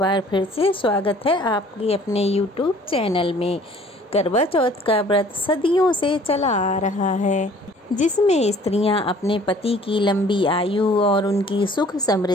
फिर से स्वागत है आपके अपने YouTube चैनल में। करवा चौथ का व्रत सदियों से चला आ रहा है, जिसमें स्त्रियां अपने पति की लंबी आयु और उनकी सुख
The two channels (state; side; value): normal; both; correlation 0.54